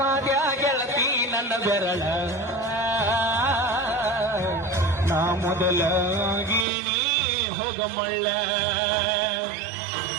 ಗೆಳತಿ ನನ್ನ ಬೆರಳ ನಾ ಮೊದಲಾಗಿನಿ ಹೋಗಮಳ್ಳ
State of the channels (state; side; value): drops out; left; at 6.7 s